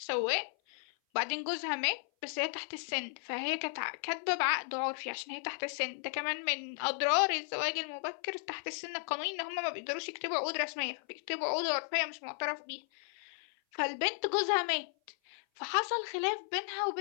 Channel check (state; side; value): silent; right; 55 dB below the other